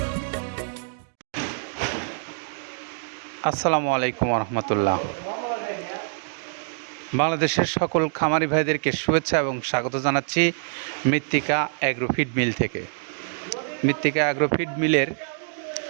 আসসালামু আলাইকুম রহমতুল্লাহ। বাংলাদেশের সকল খামারি ভাইদেরকে শুভেচ্ছা এবং স্বাগত জানাচ্ছি মৃত্তিকা অ্যাগ্রোফিড মিল থেকে। মৃত্তিকা অ্যাগ্রোফিড মিলের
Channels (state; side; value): silent; left; digital silence